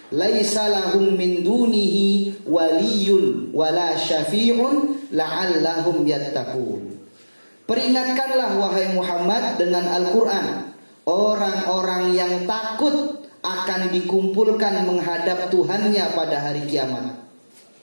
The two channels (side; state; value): both; inverted; correlation -1.00